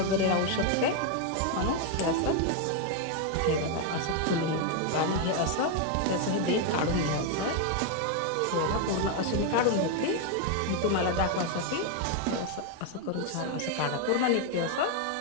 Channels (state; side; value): different; both; correlation 0.01